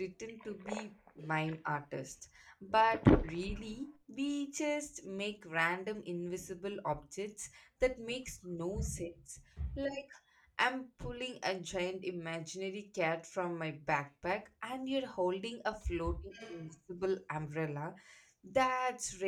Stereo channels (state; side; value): identical; both; correlation 1.00